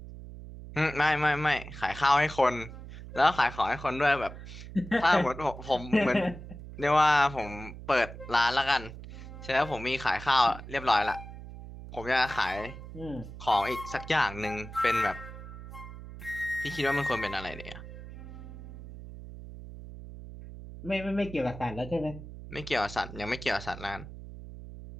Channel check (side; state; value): right; noise; hum, 13 dB below the sound